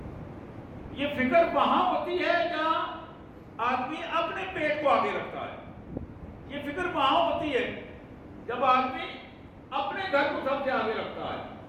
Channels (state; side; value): identical; both; correlation 1.00